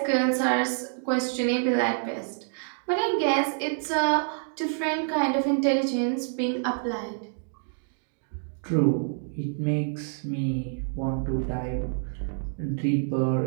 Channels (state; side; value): silent; left; digital silence